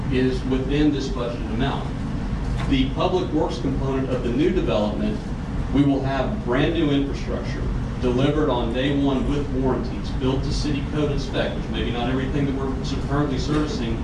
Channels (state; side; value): identical; both; correlation 1.00